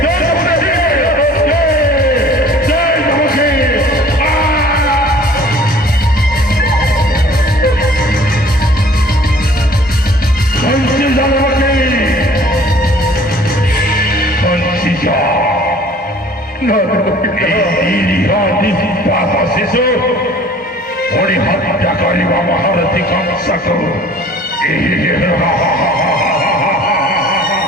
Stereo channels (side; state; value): both; normal; correlation 0.51